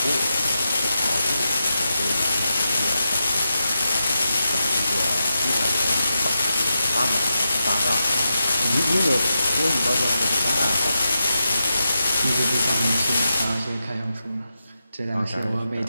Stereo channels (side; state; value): both; inverted; correlation -0.88